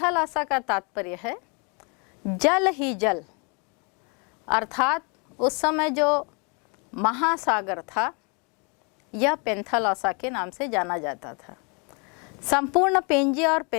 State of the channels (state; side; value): quieter; right; 33.9 dB